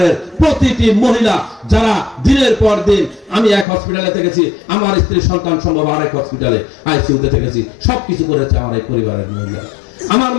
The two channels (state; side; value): drops out; right; at 3.7 s